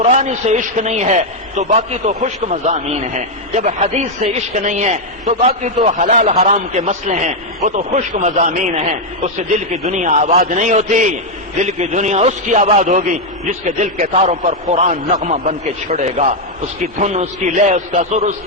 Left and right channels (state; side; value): normal; both; correlation 0.01